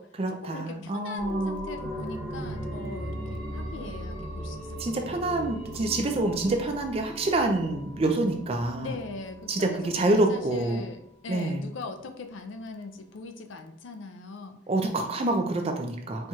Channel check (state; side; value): normal; both; correlation 0.51